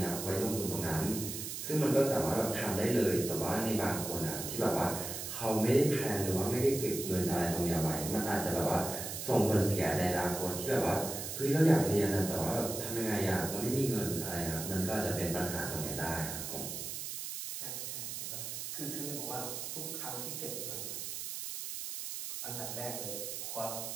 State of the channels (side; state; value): right; noise; hiss, 6 dB below the sound